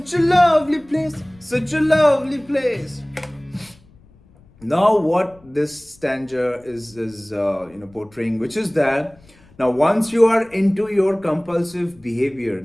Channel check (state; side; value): noise; left; rumble, 28 dB below the sound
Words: a lovely place, such a lovely place. Now what this stanza is portraying, which is that now once you are into your compulsive behavior,